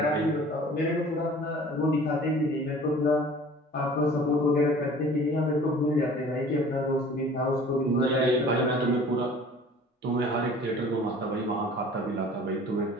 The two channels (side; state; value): both; normal; correlation 0.47